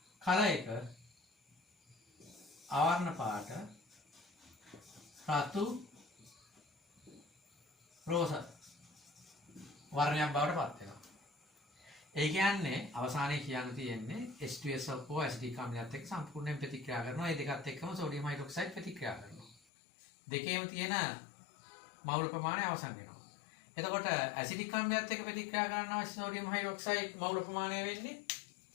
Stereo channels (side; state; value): right; drops out; at 19.6 s